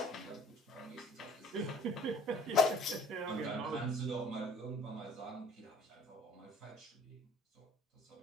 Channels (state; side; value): normal; both; correlation 0.52